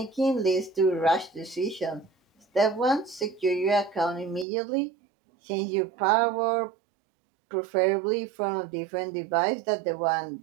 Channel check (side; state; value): left; drops out; at 4.5 s